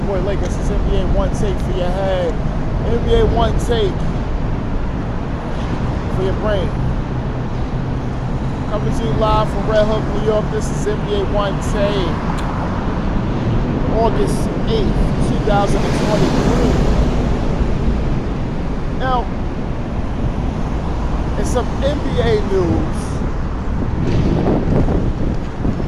Boy Lakers. This is NBA One Take for your head. NBA One Take for your brain. Coming to you live from Red Hook, New York. This is NBA One Take. August 8th, 2023. Now, in some NBA news,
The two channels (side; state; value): both; identical; correlation 1.00